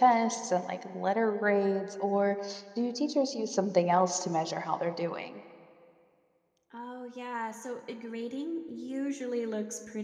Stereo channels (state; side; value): identical; both; correlation 1.00